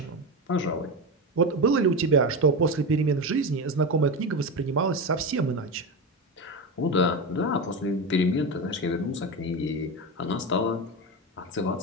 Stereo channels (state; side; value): normal; both; correlation 0.19